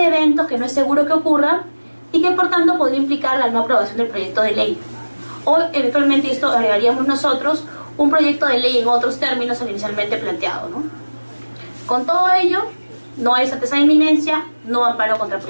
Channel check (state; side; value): inverted; both; correlation -1.00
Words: eventos que no es seguro que ocurran y que por tanto podría implicar la no aprobación del proyecto de ley. O eventualmente, esto agregaríamos nosotros, un proyecto de ley en otros términos al inicialmente planteado, ¿no? Con todo ello, no hay certeza de inminencia, no amparo contra